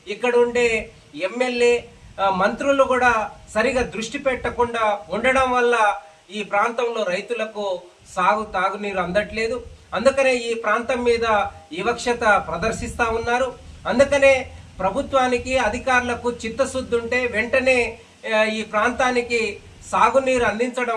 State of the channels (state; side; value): identical; both; correlation 1.00